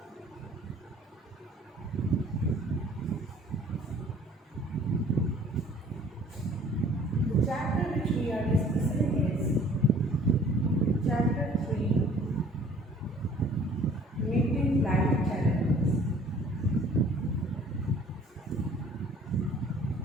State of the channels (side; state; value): both; normal; correlation 0.54